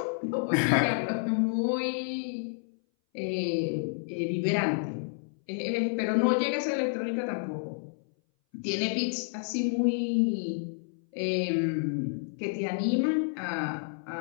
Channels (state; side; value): silent; right; 58 dB below the other